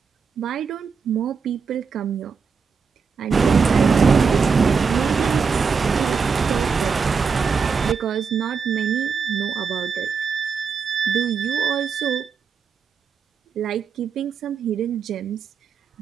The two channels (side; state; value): left; quieter; 5.7 dB